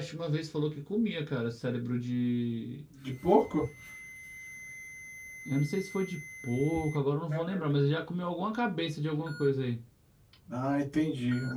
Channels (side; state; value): both; identical; correlation 1.00